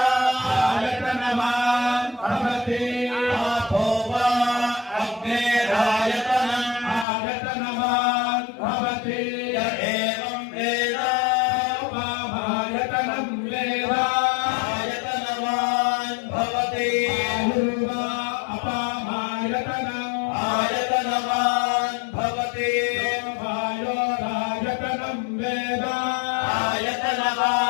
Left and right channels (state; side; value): drops out; right; at 7.1 s